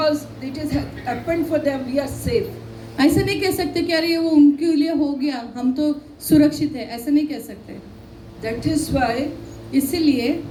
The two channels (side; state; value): both; identical; correlation 1.00